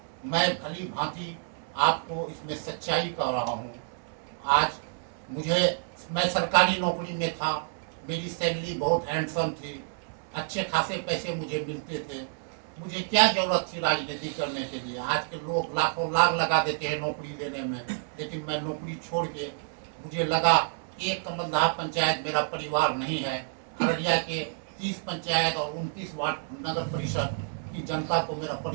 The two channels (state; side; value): silent; left; digital silence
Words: मैं भली भांति आपको इसमें सच्चाई कह रहा हूँ। आज मैं सरकारी नौकरी में था, मेरी सैलरी बहुत हैंडसम थी, अच्छे खासे पैसे मुझे मिलते थे। मुझे क्या जरूरत थी राजनीति करने के लिए? आज के लोग लाखों लाख लगा देते हैं नौकरी देने में, लेकिन मैं नौकरी छोड़ के मुझे लगा एक कमलदह पंचायत मेरा परिवार नहीं है। अररिया के 30 पंचायत और 29 वार्ड नगर परिषद की जनता को मेरा